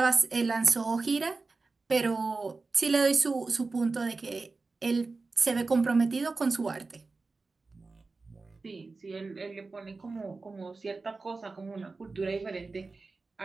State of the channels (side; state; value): left; quieter; 3.8 dB